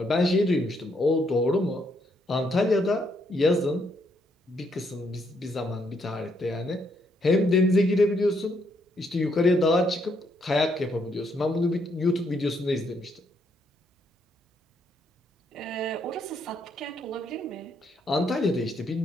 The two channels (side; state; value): both; normal; correlation 0.74